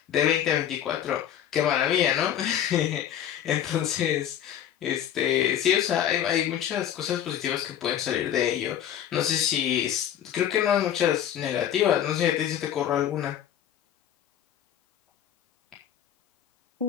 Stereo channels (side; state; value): right; quieter; 10.2 dB